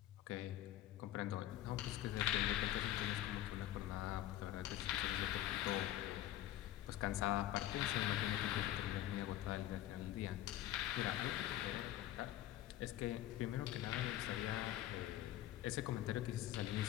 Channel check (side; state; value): right; quieter; 13.6 dB